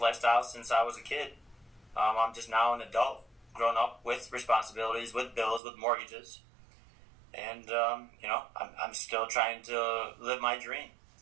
since I was a kid. I'm just now an adult, grown up with responsibilities, with bills, with mortgages. And, you know, I'm still trying to live my dream.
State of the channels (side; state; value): left; drops out; at 5.6 s